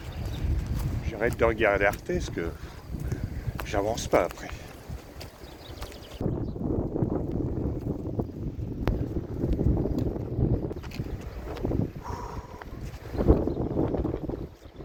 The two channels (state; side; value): identical; both; correlation 1.00